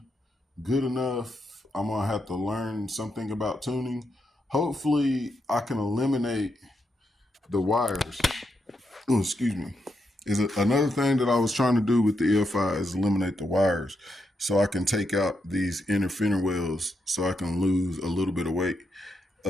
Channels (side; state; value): both; normal; correlation 0.82